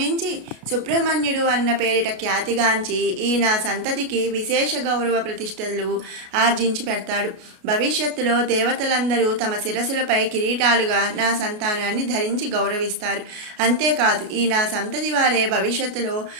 సుబ్రహ్మణ్యుడు అన్న పేరిట ఖ్యాతిగాంచి ఈ నా సంతతికి విశేష గౌరవ ప్రతిష్టలు ఆర్జించి పెడతాడు. భవిష్యత్తులో దేవతలందరూ తమ శిరస్సులపై కిరీటాలుగా నా సంతానాన్ని ధరించి గౌరవిస్తారు. అంతేకాదు ఈ నా సంతతి వారే భవిష్యత్తులో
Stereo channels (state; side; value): late; left; 33 ms